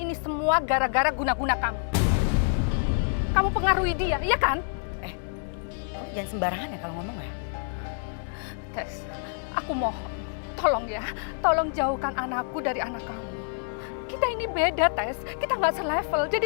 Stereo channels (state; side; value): silent; right; digital silence